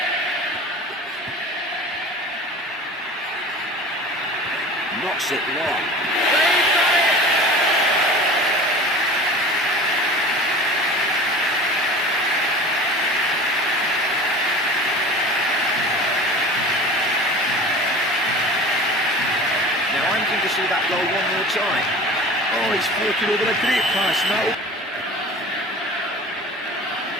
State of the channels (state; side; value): normal; both; correlation 0.38